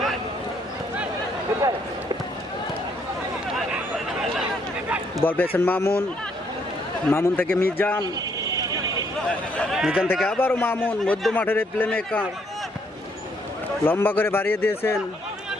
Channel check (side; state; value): both; normal; correlation 0.70